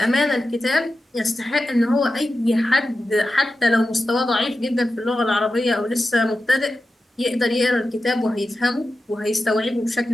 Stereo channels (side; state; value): both; normal; correlation 0.92